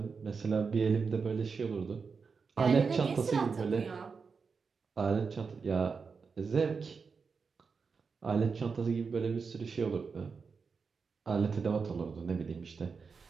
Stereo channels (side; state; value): left; quieter; 5.2 dB